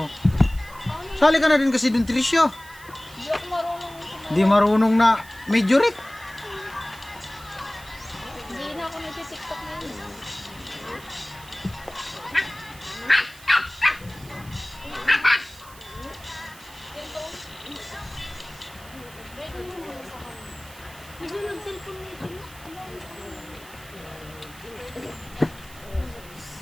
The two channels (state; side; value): noise; right; hiss, 20 dB below the sound